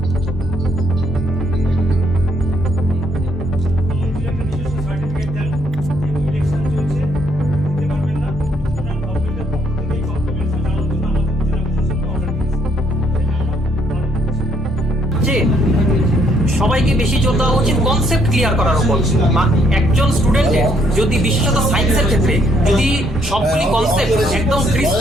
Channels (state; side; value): normal; both; correlation 0.69